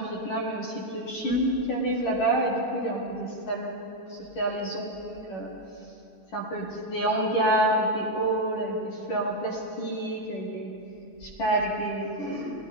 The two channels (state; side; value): late; right; 10 ms